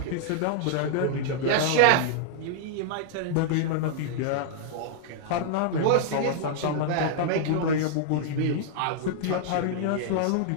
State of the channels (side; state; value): both; different; correlation -0.01